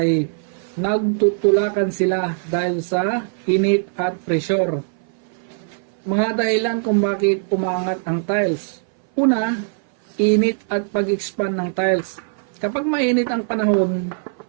nagtutulakan sila dahil sa init at pressure. Mga dahilan kung bakit umaangat ang tiles. Una, init at pag-expand ng tiles. Kapag mainit ang panahon,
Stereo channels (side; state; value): left; silent; 59 dB below the other